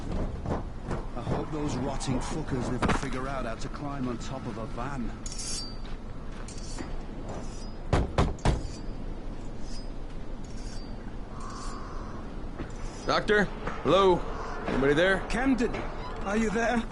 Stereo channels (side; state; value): both; identical; correlation 1.00